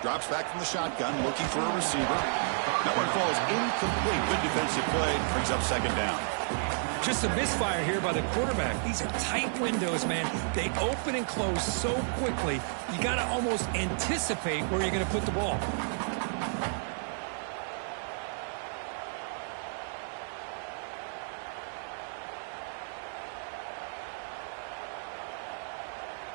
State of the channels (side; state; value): left; silent; 57 dB below the other